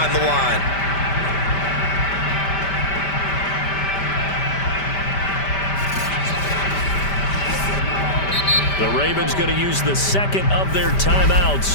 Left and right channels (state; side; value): late; right; 5.1 ms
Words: the line. The Ravens going to use the 2nd of their